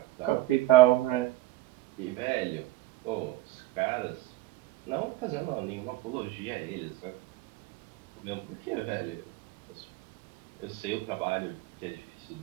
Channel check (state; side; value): quieter; left; 16.9 dB